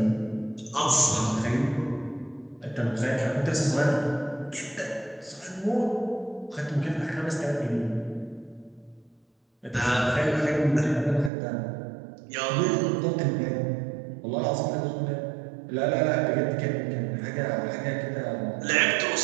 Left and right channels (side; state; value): left; drops out; at 11.3 s